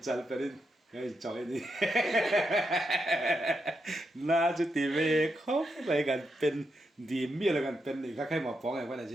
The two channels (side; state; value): both; normal; correlation 0.83